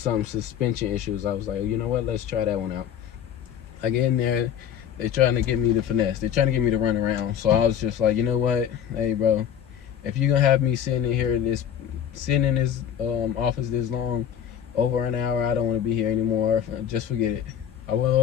suspension issues. I was like, you know what, let's try that one out. I get in there, they're trying to get me to finesse. They're trying to get me to run around. So I was just like, you know what, hey bro, if you're gonna have me sitting in here, sitting in this office this long, over an hour, I don't want to be here anymore. Just forget it. I went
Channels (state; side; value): quieter; right; 9.2 dB